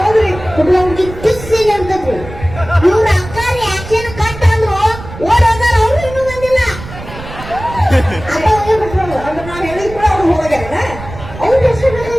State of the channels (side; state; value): right; noise; rumble, 13 dB below the sound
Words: ಹುಡುಗ ಹುಡುಗಿ ಕಿಸ್ ಸೀನ್ ಇರ್ತದ್ರಿ. ಇವ್ರ ಅಕ್ಕಾರಿ ಆಕ್ಷನ್ ಕಟ್ ಅಂದ್ರು ಓಡೋದಾರ. ಅವ್ರು ಇನ್ನೂ ಬಂದಿಲ್ಲ. ಅದ ಹೋಗಿ ಬಿಟ್ರು. ಅಂದ್ರೆ ನಾವ್ ಹೇಳಿದ್ ಕೂಡ ಅವ್ರು ಹೋಗ್ಯಾರ. ಅವ್ರ ಹೆಸರು